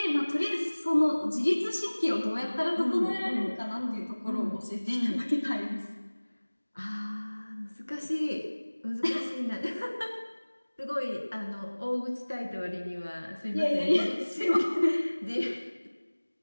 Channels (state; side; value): inverted; both; correlation -1.00